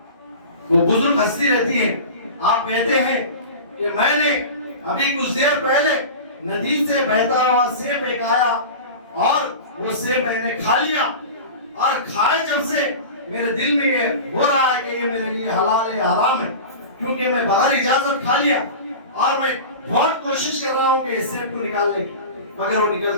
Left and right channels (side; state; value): both; inverted; correlation -0.32